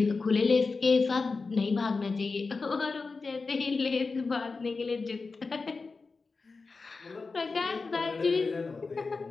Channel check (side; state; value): right; quieter; 4.2 dB